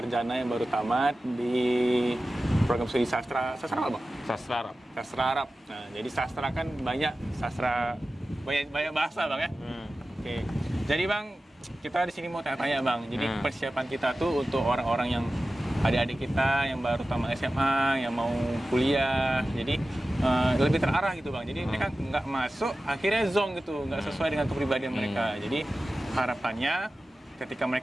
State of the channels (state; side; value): normal; both; correlation 0.95